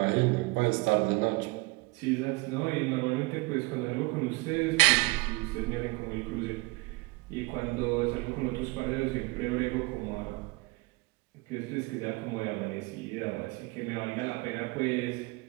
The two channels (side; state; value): left; quieter; 24.3 dB